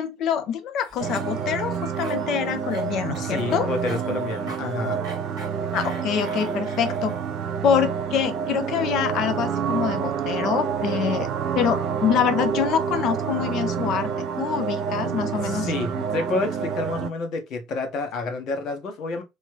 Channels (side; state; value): both; normal; correlation 0.45